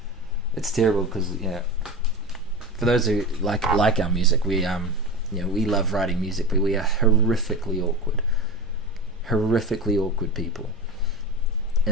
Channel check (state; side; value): normal; both; correlation 0.26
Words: It's terrible because for those who like our music, we we love writing music, but we are horrifically awkward people.